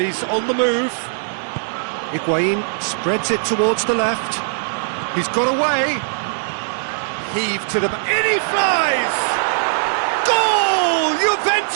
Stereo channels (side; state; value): left; silent; 66 dB below the other